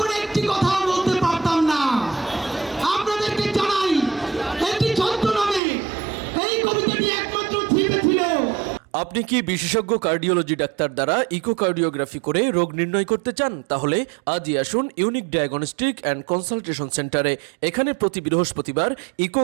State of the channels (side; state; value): left; drops out; at 5.6 s